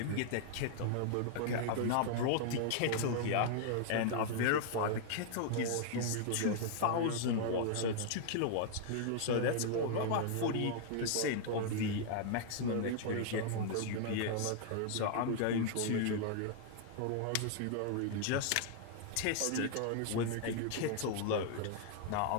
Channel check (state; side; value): different; both; correlation -0.01